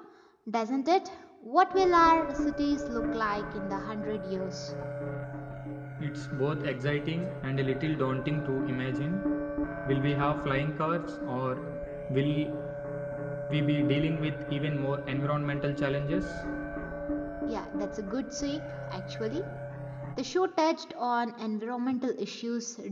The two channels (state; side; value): identical; both; correlation 1.00